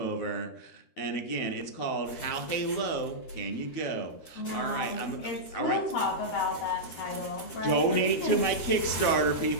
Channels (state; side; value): late; right; 13 ms